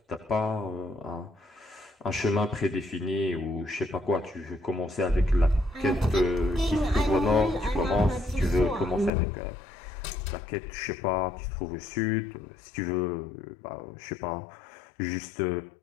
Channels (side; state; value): right; drops out; at 9.1 s